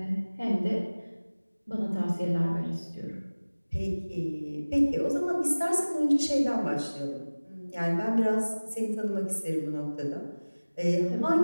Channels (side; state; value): both; inverted; correlation -1.00